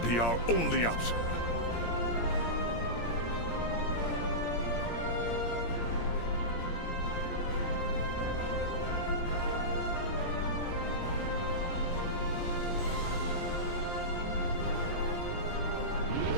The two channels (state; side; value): late; right; 17 ms